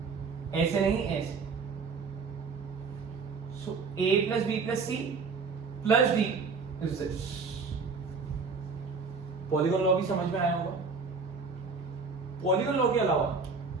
ऐसे नहीं ऐसे। So A plus B plus C plus D is this. Polygon law भी समझ में आया होगा। पॉलीगॉन लॉ के अलावा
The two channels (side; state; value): left; quieter; 4.8 dB